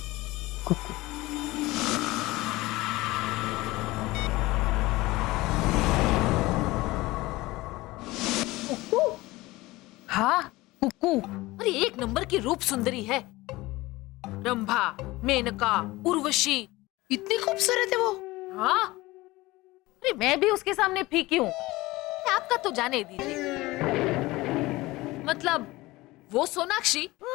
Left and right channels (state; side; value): quieter; right; 19.9 dB